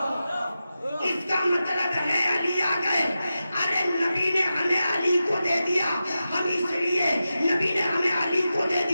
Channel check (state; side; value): inverted; both; correlation -0.92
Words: اس کا مطلب ہے علی آ گئے. ارے نبی نے ہمیں علی کو دے دیا، ہم اس لیے نبی نے ہمیں علی کو دے